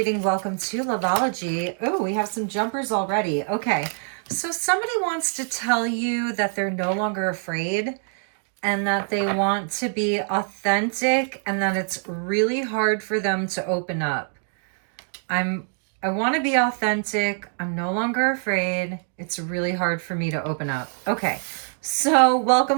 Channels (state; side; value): silent; left; 59 dB below the other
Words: Welcome to loveology. Oh, we have some jumpers already. Okay, so somebody wants to tell you that they're no longer afraid and that they want to be authentic and that it's really hard for them to open up. I want to be authentic. I'm no longer afraid. It's really hard for me to open up. Okay. So,